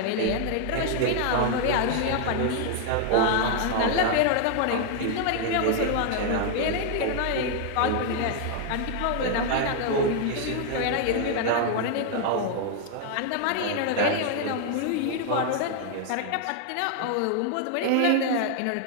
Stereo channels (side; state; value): both; different; correlation 0.00